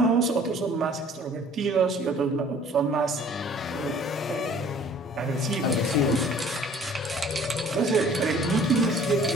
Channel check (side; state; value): both; normal; correlation 0.53